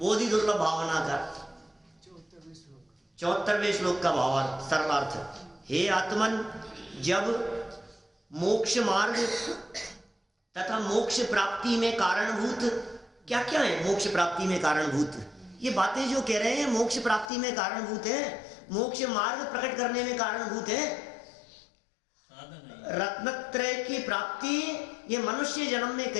दुर्लभ भावना का 74वें श्लोक का भावार्थ, सरल अर्थ। हे आत्मन, जब मोक्ष मार्ग तथा मोक्ष प्राप्ति में कारणभूत क्या क्या है, मोक्ष प्राप्ति में कारणभूत ये बातें जो कह रहे हैं, मोक्ष प्राप्ति में कारणभूत है, मोक्ष मार्ग प्रकट करने में कारणभूत है। रत्नत्रय की प्राप्ति ये मनुष्य जन्म में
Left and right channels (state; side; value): drops out; right; at 17.3 s